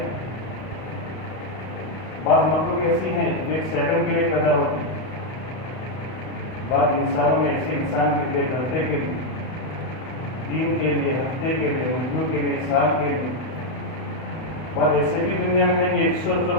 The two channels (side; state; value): right; late; 32 ms